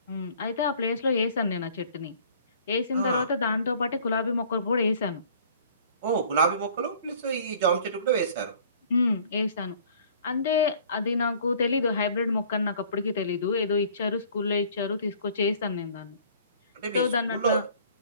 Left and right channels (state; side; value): inverted; both; correlation -0.53